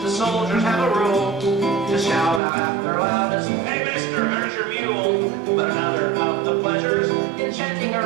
the soldiers have a rule to shout out at their loudest, "Hey, mister, there's your mule." But another of the pleasures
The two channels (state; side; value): drops out; left; at 2.4 s